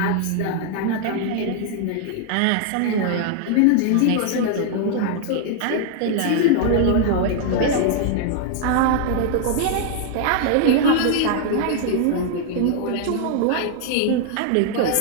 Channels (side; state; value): both; different; correlation 0.00